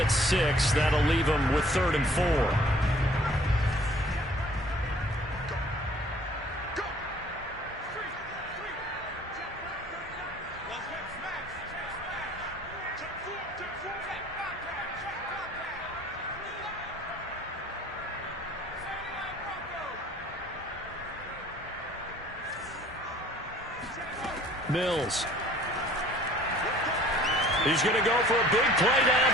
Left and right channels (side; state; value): both; normal; correlation 0.53